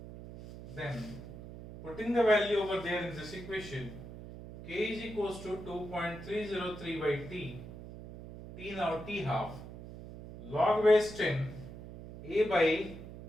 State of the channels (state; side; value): noise; right; hum, 13 dB below the sound